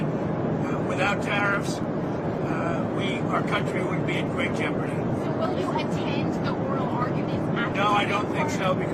without tariffs, our country would be in great jeopardy. So will you attend the oral arguments after? No, I don't think so,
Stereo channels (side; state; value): both; identical; correlation 1.00